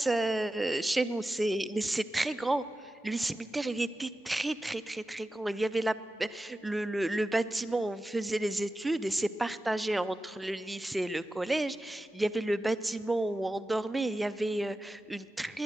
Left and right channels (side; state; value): both; normal; correlation 0.93